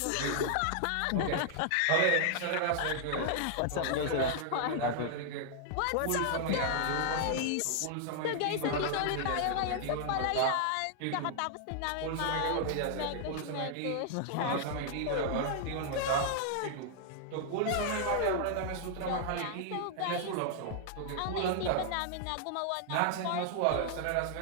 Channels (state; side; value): different; both; correlation 0.00